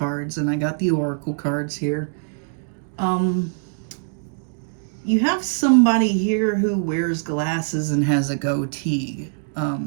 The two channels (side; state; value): left; silent; digital silence